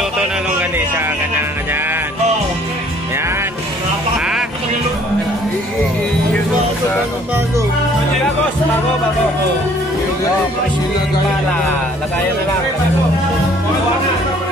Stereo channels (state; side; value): normal; both; correlation 0.58